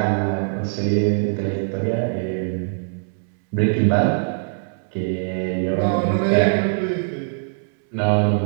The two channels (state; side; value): silent; left; digital silence